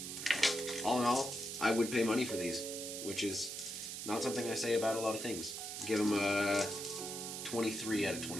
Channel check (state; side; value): noise; right; hiss, 6 dB below the sound